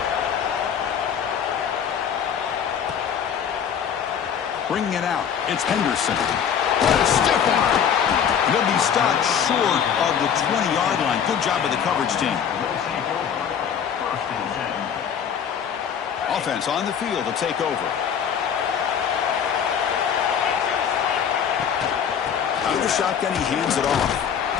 Bringing it out, it's Henderson. What a stiff arm. He'll be stopped short of the 20-yard line. Good job by the coverage team. Offense on the field to take over. Out of the shotgun, he hands it off.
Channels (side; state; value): right; quieter; 8.0 dB